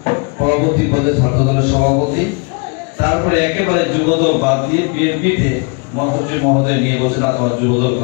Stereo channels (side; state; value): right; quieter; 33.1 dB